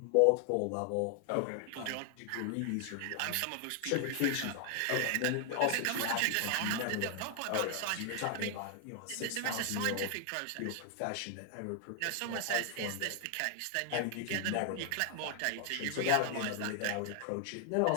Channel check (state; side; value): different; both; correlation 0.00